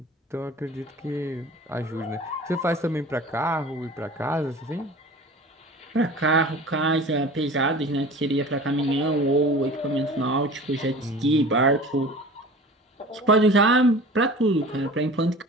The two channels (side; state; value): both; normal; correlation 0.40